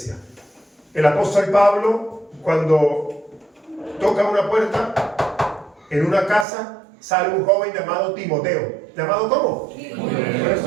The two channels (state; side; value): drops out; left; at 6.5 s